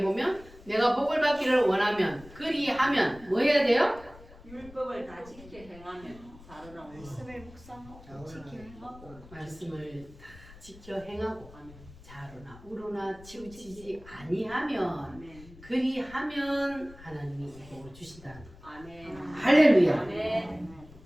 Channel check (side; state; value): left; noise; rumble, 20 dB below the sound